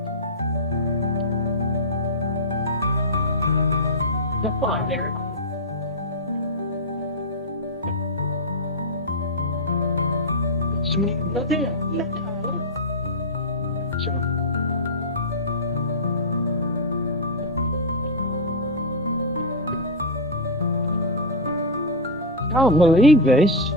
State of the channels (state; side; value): normal; both; correlation -0.04